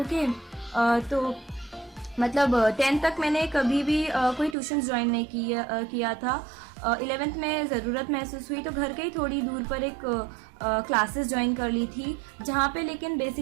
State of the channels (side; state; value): left; drops out; at 4.5 s